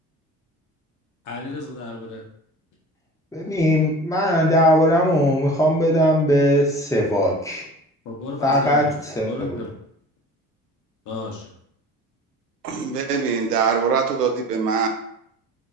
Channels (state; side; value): normal; both; correlation 0.41